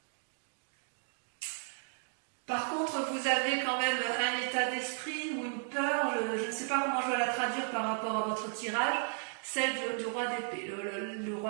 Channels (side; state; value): left; silent; 55 dB below the other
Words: Par contre, vous avez quand même un état d'esprit ou une peur, je ne sais pas comment je vais la traduire par rapport à votre tirage, celle du roi d'épée. Le